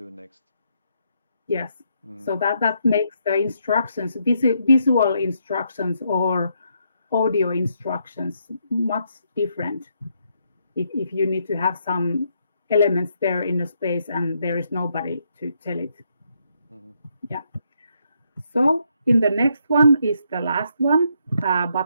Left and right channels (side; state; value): both; inverted; correlation -0.76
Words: next. Yes. So that makes the instructions, visual instructions or audio instructions, much different. If you need to have some elements there in the space and there is nobody to tell it. Yeah. So in the next one is the last one,